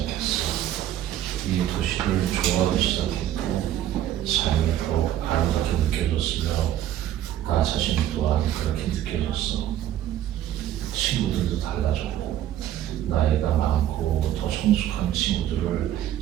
이 도시를 좋아하기 시작했고 삶이 더욱 아름답게 느껴졌으며 나 자신 또한 그렇게 느껴졌어. 친구들도 달라졌고 나이가 많고 더 성숙한 친구들을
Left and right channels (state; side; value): quieter; left; 11.9 dB